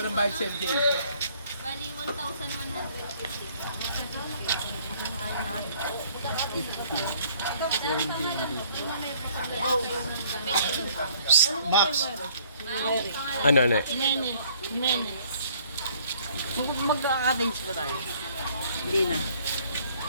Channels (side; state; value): both; inverted; correlation -0.60